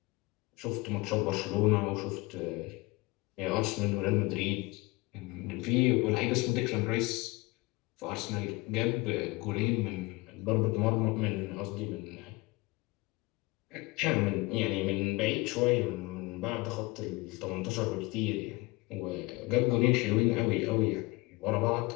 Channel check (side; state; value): right; quieter; 23.2 dB